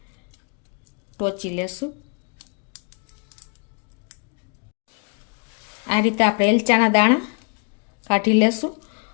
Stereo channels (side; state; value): right; quieter; 36.4 dB